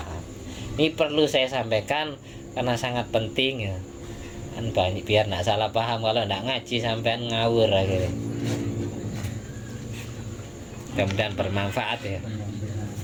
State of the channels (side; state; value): both; identical; correlation 1.00